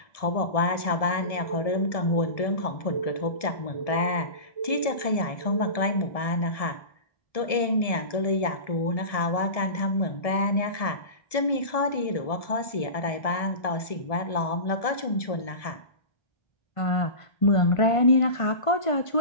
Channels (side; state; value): right; late; 1.7 ms